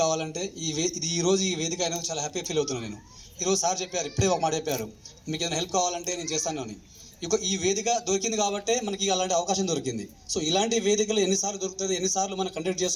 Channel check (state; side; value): identical; both; correlation 1.00